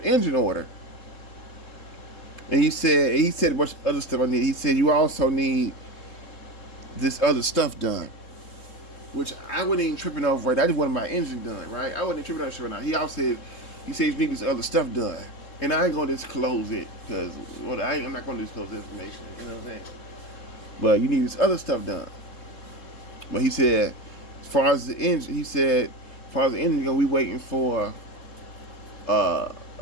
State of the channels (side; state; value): right; late; 3.7 ms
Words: order. And he said a bunch of other stuff I need. He said you also need this other stuff done, which I wasn't even tripping over. Right, I just wanted my engine done. Right, I wasn't tripping over shit right now. He also said you need this other stuff done, and I ain't gonna disclose it because I'm not gonna disclose the information. You know what I'm saying? But you need this other stuff done. But he said, as far as the engine, we waiting for